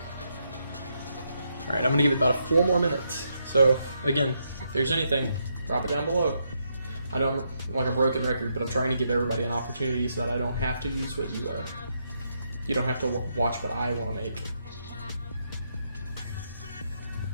Alright, I'm going to give it about 4 more minutes. So, again, if there's anything, drop it down below. I know I'm like a broken record, but I'm trying to give everybody an opportunity so that I don't have to use what you don't have to watch what I want to make.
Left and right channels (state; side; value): inverted; both; correlation -0.79